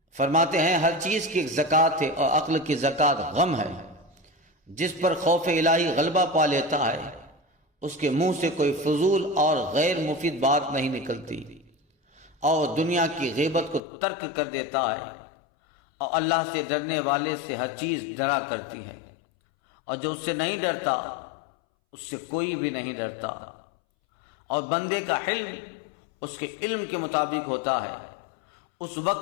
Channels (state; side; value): drops out; right; at 13.8 s